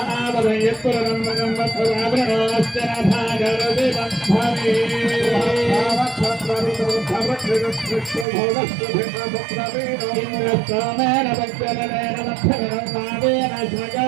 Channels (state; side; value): drops out; left; at 8.2 s